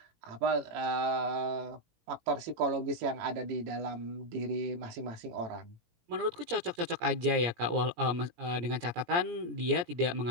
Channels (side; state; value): left; late; 17 ms